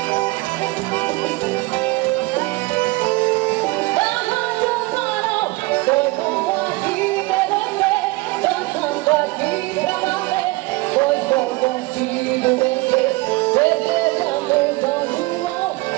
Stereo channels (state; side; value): quieter; left; 22.6 dB